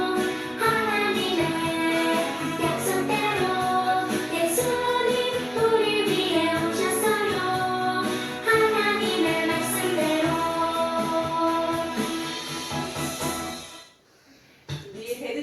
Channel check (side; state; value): both; identical; correlation 1.00